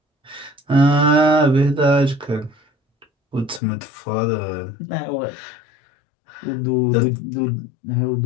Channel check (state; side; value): drops out; right; at 3.6 s